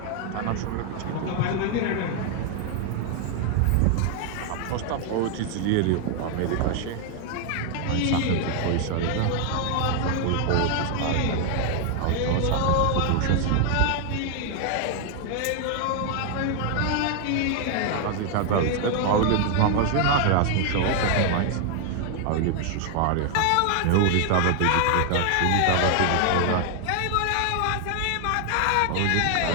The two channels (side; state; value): both; different; correlation 0.00